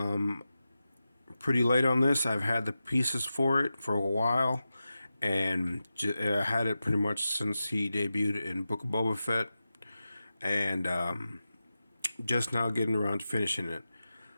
Pretty late on this. I've had the pieces for it for a while, and I had it pretty much since he debuted in Book of Boba Fett, and just now getting around to finishing it.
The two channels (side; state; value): both; inverted; correlation -0.92